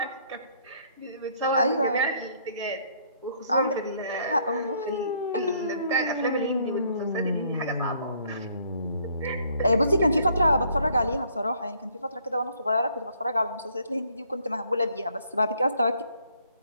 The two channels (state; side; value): inverted; both; correlation -0.65